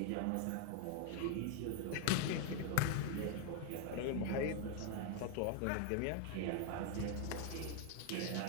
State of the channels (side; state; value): both; different; correlation 0.00